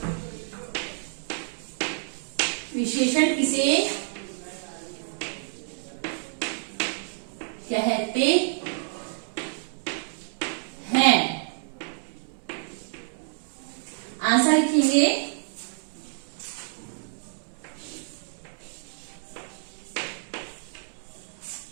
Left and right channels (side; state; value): left; silent; digital silence